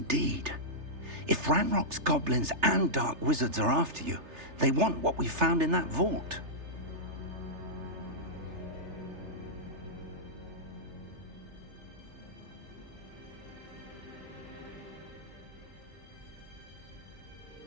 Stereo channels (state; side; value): late; left; 3.3 ms